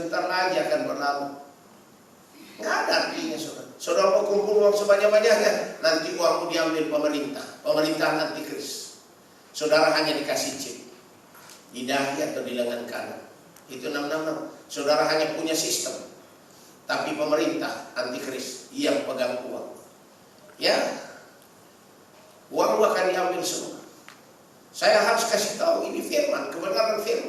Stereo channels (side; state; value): both; identical; correlation 1.00